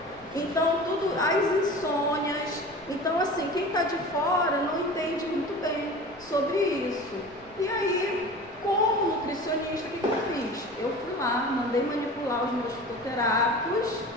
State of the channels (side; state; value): left; noise; rumble, 26 dB below the sound